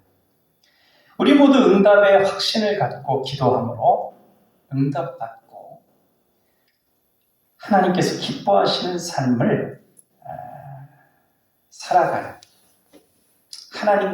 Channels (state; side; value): identical; both; correlation 1.00